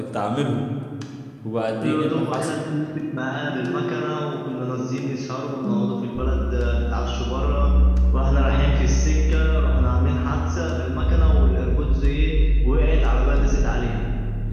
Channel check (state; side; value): identical; both; correlation 1.00